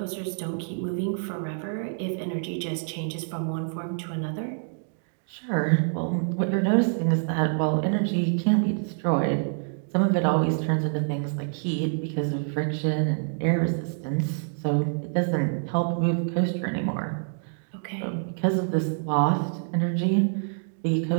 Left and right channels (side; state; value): left; silent; digital silence